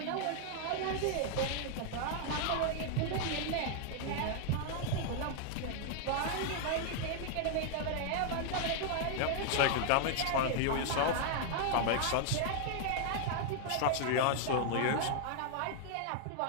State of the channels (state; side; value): different; both; correlation 0.00